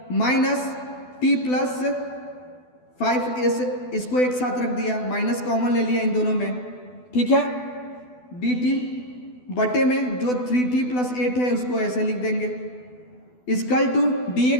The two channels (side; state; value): right; late; 12 ms